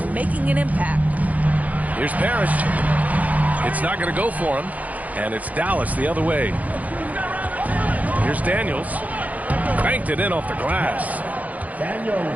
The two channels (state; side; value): late; left; 0.075 ms